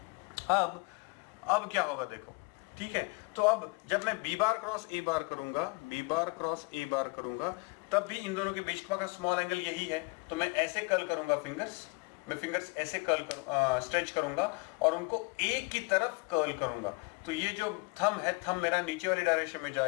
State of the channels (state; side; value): quieter; right; 30.0 dB